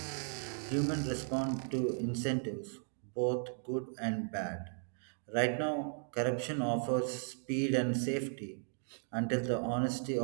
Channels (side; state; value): left; silent; 54 dB below the other